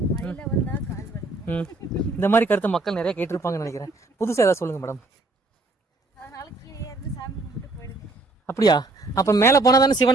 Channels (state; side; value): quieter; left; 3.1 dB